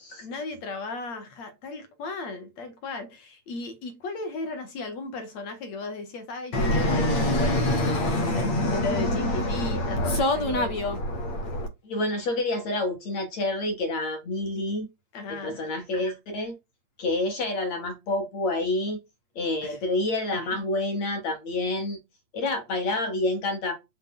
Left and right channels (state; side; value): late; right; 8.6 ms